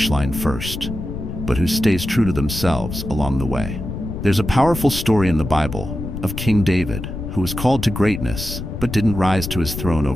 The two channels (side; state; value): left; noise; rumble, 7 dB below the sound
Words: line first, but who stays true to themselves along the way. There's a powerful story in the Bible of King David, who was called to greatness, but didn't rise to his throne